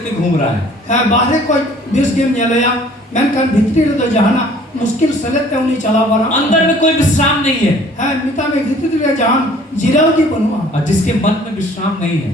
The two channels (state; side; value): normal; both; correlation 0.54